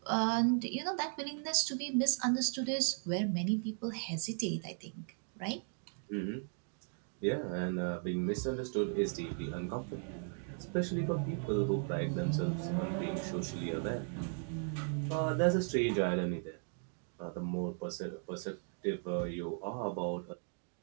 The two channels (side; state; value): left; silent; 53 dB below the other